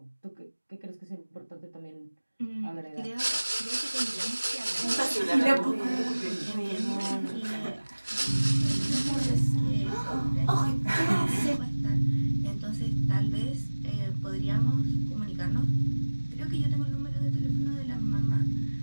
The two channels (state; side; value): inverted; both; correlation -1.00